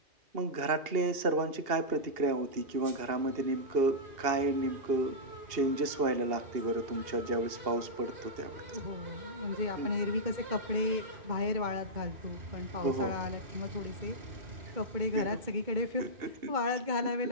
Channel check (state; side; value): late; left; 2.7 ms